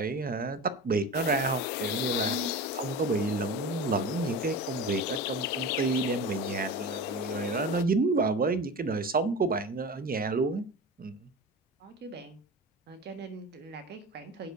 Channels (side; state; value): both; normal; correlation 0.30